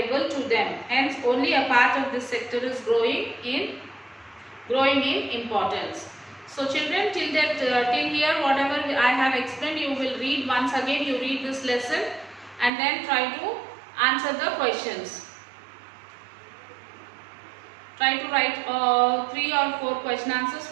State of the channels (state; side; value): drops out; left; at 12.7 s